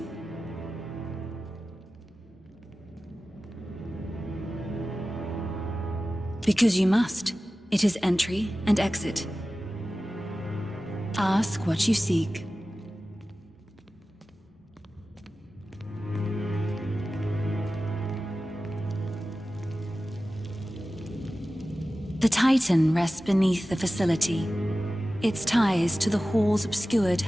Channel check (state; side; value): normal; both; correlation 0.95